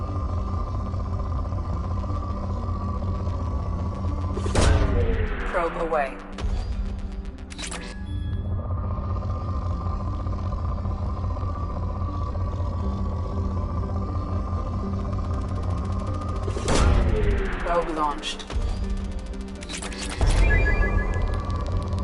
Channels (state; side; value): identical; both; correlation 1.00